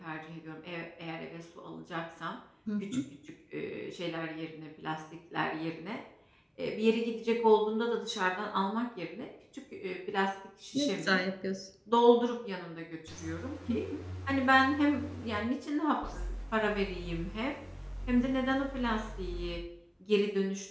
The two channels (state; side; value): identical; both; correlation 1.00